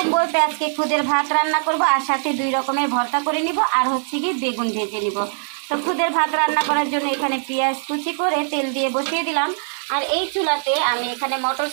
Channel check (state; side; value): silent; left; digital silence